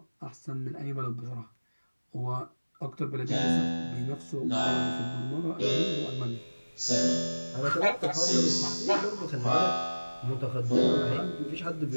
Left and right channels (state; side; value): inverted; both; correlation -1.00